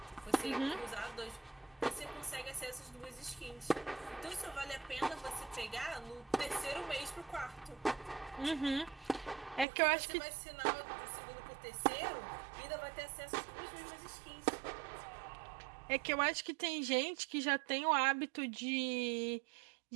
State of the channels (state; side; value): drops out; left; at 9.7 s